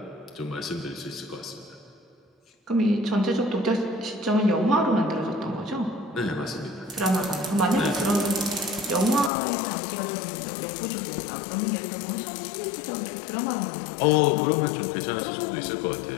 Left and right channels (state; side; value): drops out; right; at 9.3 s